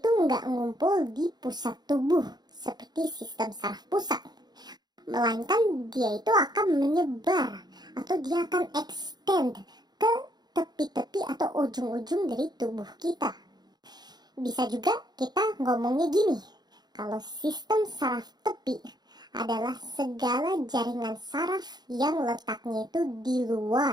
nggak ngumpul di pusat tubuh seperti sistem saraf pusat. Melainkan dia itu akan menyebar atau dia akan extend ke tepi-tepi atau ujung-ujung dari tubuh kita. Bisa juga kita ngomongnya gini, kalau sistem saraf tepi adalah segala jaringan saraf yang letaknya itu di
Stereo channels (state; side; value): late; left; 0.20 ms